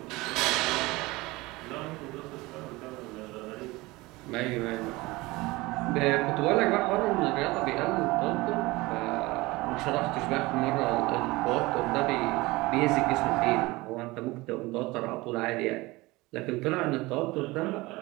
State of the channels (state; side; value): quieter; left; 21.5 dB